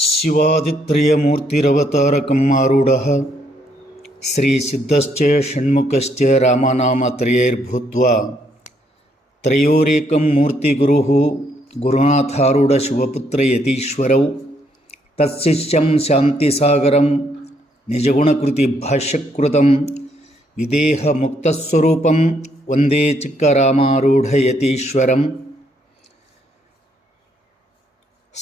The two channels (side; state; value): both; normal; correlation 0.72